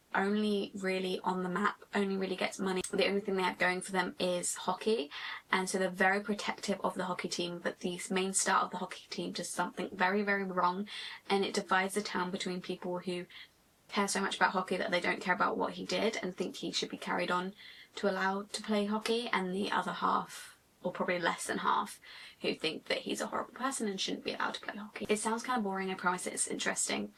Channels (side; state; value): both; identical; correlation 1.00